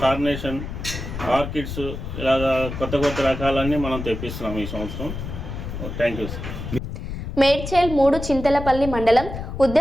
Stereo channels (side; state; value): left; noise; rumble, 7 dB below the sound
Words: కార్నేషన్, ఆర్కిడ్స్, ఇలాగా కొత్త కొత్త రకాలన్నీ మనం తెప్పిస్తున్నాం ఈ సంవత్సరం. Thank you sir. Medchal 3 Chintalapalli మండలం